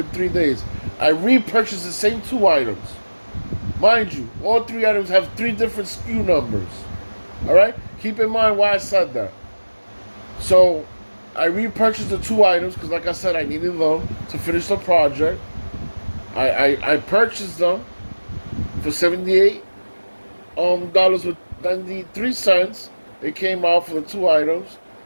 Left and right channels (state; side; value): inverted; both; correlation -1.00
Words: 3 days. I repurchased the same two items. Mind you, all three items have three different SKU numbers. All right, keep in mind why I said that. So I repurchased the two items because, like I said, I needed them to finish the project. I purchased them for $78 with 93 cents. It came out for the two items.